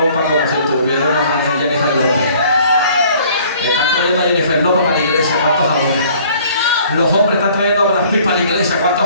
como si tuviéramos a Jennifer López. Están trayendo a Jennifer López para la iglesia. ¿Cuántos adoran? Los hombres están trayendo a Brad Pitt para la iglesia.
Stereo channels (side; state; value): both; inverted; correlation -0.55